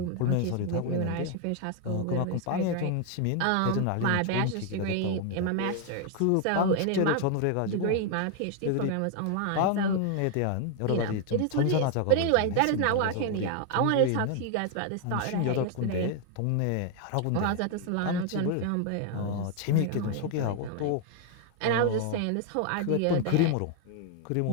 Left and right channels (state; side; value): different; both; correlation 0.00